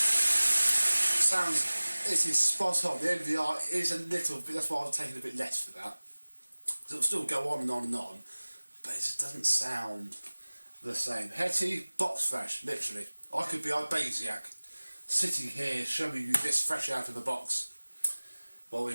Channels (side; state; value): both; inverted; correlation -1.00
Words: sounds, it is spot on. The MVR is a little bit, that's why I was taking a bit less for that. Because it'll still go on and on and on, but it just doesn't sound the same. Hetty, box fresh, literally. I could be Ibasiak, sitting here showing you this fresh out of the box, while we